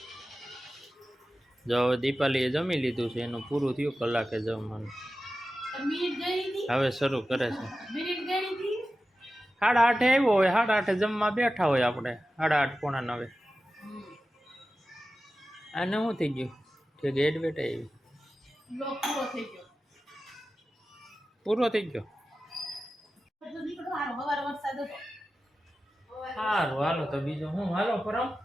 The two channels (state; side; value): normal; both; correlation 0.94